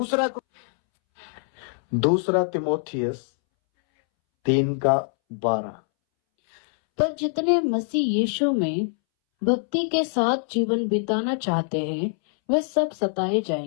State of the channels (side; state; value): right; silent; 63 dB below the other